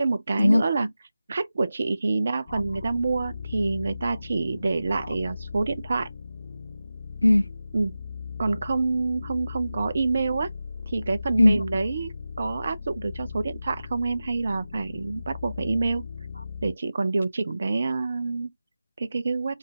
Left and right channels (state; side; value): inverted; both; correlation -0.94